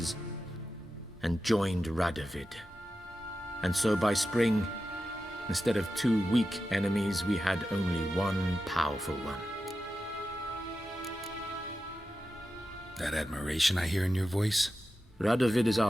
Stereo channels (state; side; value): normal; both; correlation 0.91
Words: and joined Radovid. And so by spring, instead of 2 weak enemies, we had only one powerful one. That admiration I hear in your voice? Radovid is